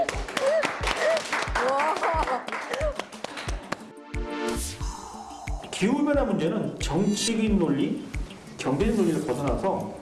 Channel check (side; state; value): both; identical; correlation 1.00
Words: 기후변화 문제는 정치적인 논리, 경제적 논리를 벗어나서